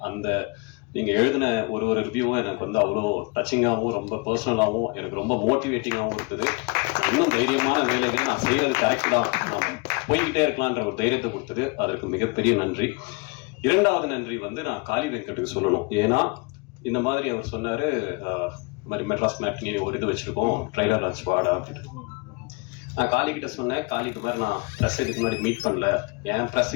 அந்த நீங்க எழுதின ஒரு ரிவ்யூவும் எனக்கு வந்து அவ்வளோ டச்சிங்காகவும் ரொம்ப பர்சனலாகவும் எனக்கு ரொம்ப மோட்டிவேட்டிங்காகவும் இருக்குது. இன்னும் தைரியமான வேலைகள் நான் செய்யறது கரெக்ட் தான், நான் போய்கிட்டே இருக்கலான்ற ஒரு தைரியத்தை கொடுத்தது, அதற்கு மிகப்பெரிய நன்றி. 2வது நன்றி வந்து நான் காளி வெங்கட்டுக்கு சொல்லணும். ஏன்னா இந்த மாதிரி அவர் சொன்னாரு, இந்த மாதிரி மெட்ராஸ் மேட்னி ஒரு இது வச்சிருக்கோம், ட்ரைலர் லான்ச் வாடா அப்படின்னு. நான் காளி கிட்ட சொன்னேன், காளி இது மாதிரி நான் ப்ரெஸ் இதுக்கு முன்னாடி மீட் பண்ணல, என்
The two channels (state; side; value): quieter; right; 28.9 dB